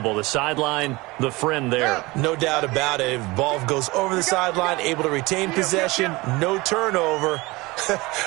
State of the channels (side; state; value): left; quieter; 22.4 dB